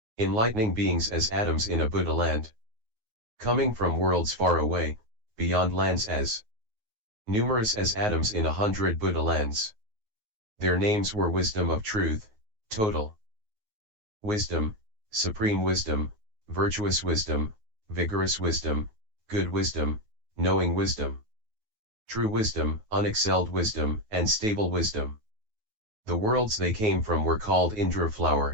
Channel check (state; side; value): late; left; 9.4 ms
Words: enlightening beings as atoms in a Buddha land. Coming from worlds far away, beyond lands as numerous as atoms in 100 Buddha lands. Their names were Wisdom of Truth, Total Wisdom, Supreme Wisdom, Virtuous Wisdom, Vigorous Wisdom, Good Wisdom, Knowing Wisdom, True Wisdom, Unexcelled Wisdom, and Stable Wisdom. The worlds they came from were called Indra